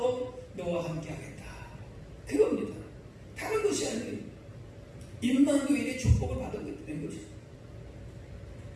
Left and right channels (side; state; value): both; identical; correlation 1.00